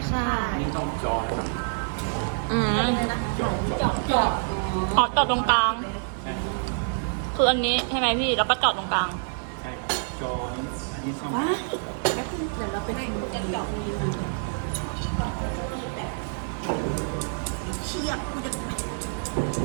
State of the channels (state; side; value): silent; left; digital silence